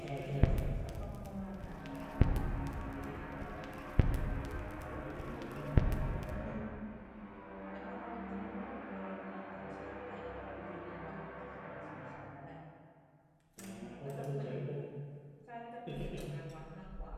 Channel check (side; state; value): both; identical; correlation 1.00